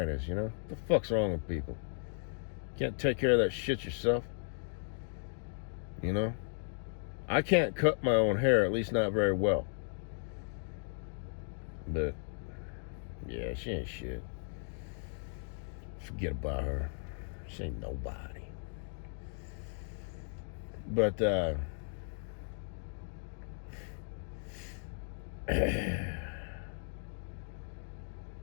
you know? What the fuck's wrong with people? Can't take care of that shit yourself? You know? I can't cut my own hair, at least not very well. But, yeah, she ain't shit. Forget about her. She ain't nobody. But, so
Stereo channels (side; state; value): right; silent; 54 dB below the other